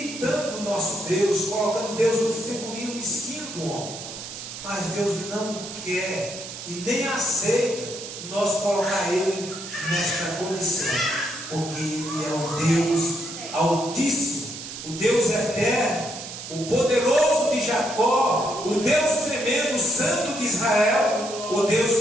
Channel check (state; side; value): noise; right; hiss, 10 dB below the sound